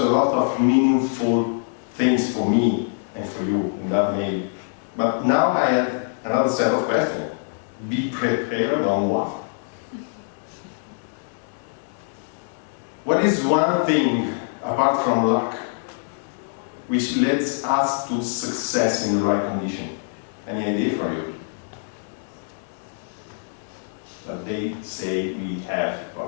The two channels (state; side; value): silent; right; digital silence